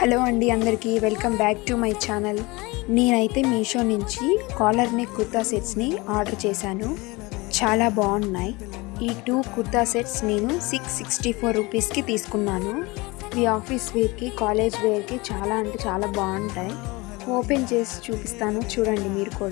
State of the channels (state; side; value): quieter; right; 23.9 dB